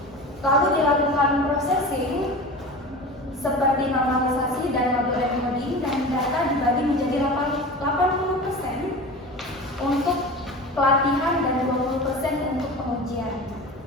dilakukan processing seperti normalisasi dan model encoding, dan data dibagi menjadi 80% untuk pelatihan dan 20% untuk pengujian.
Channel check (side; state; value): both; normal; correlation 0.33